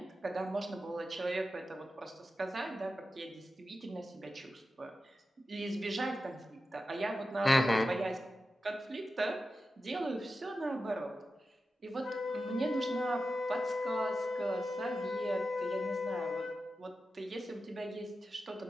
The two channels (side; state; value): both; normal; correlation 0.91